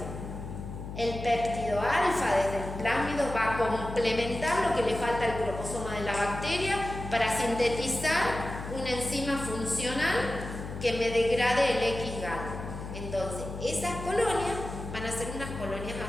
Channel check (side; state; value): left; noise; hum, 8 dB below the sound